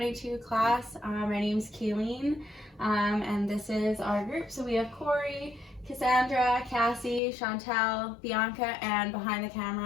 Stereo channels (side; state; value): right; drops out; at 7.2 s